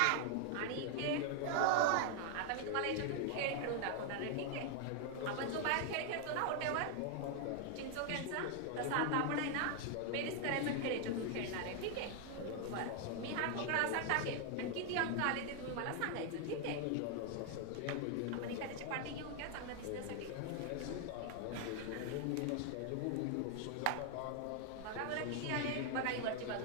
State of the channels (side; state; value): both; different; correlation 0.00